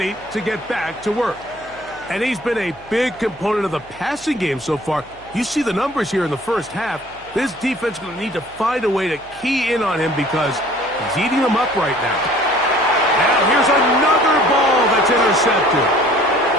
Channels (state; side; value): noise; left; hum, 25 dB below the sound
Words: to get back to work. And he's been a big component of the passing game so far. You see the numbers here in the first half. This defense is going to need to find a way to key in on him because he's eating them up right now. Now here's another ball that's intercepted.